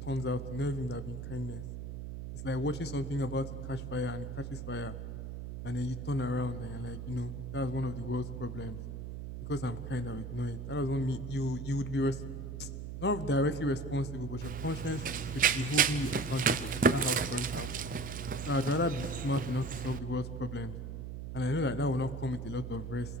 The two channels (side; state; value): right; noise; hum, 7 dB below the sound